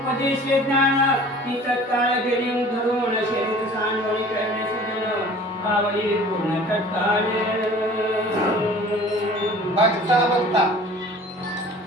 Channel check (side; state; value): both; normal; correlation 0.46